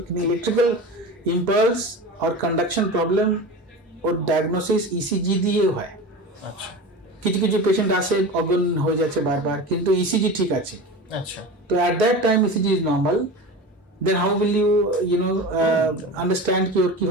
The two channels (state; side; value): normal; both; correlation 0.30